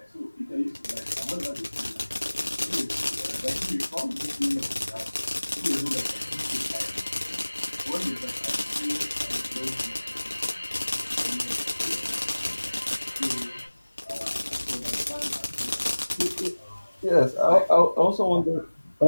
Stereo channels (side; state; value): both; inverted; correlation -1.00